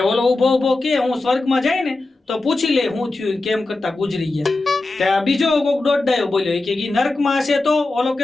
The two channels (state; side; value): quieter; right; 3.1 dB